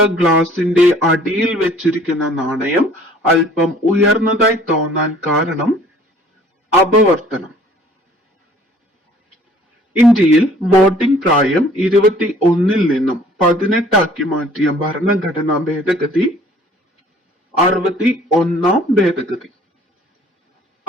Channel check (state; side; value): normal; both; correlation 0.54